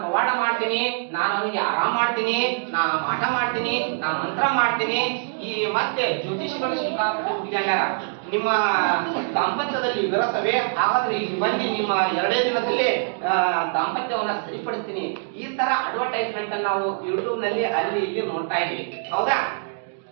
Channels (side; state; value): left; silent; digital silence